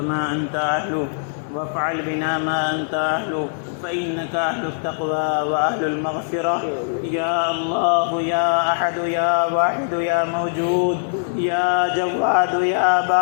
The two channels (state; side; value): silent; right; digital silence